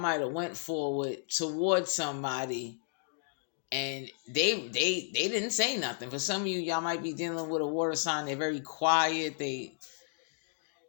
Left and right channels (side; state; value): right; silent; 56 dB below the other